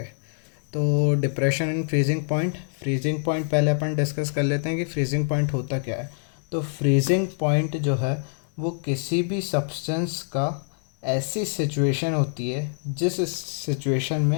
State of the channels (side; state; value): right; silent; digital silence